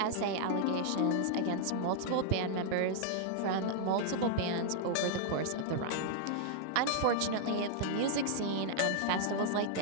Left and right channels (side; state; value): both; different; correlation -0.01